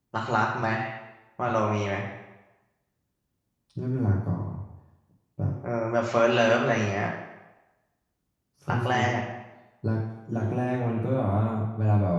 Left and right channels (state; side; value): identical; both; correlation 1.00